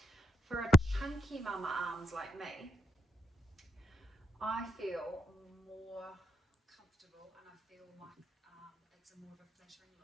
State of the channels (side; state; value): both; normal; correlation 0.81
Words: for a chunky mama arms like me, I feel more comfortable and I feel like it's a more of a flattering